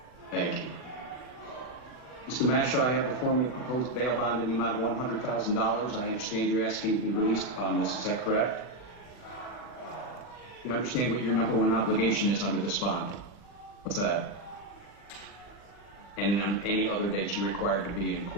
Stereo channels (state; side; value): late; right; 40 ms